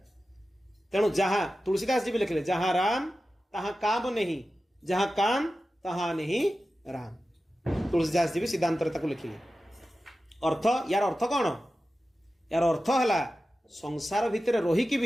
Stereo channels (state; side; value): normal; both; correlation 0.93